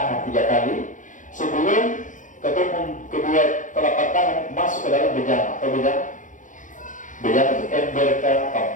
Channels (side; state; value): right; late; 0.37 ms